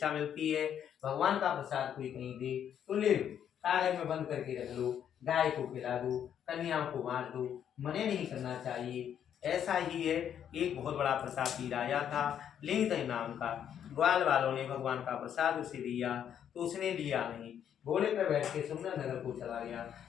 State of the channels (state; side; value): quieter; right; 9.2 dB